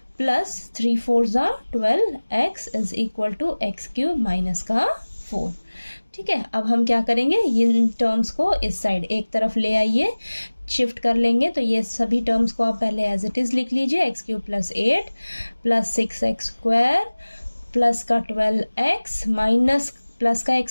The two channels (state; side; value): inverted; both; correlation -1.00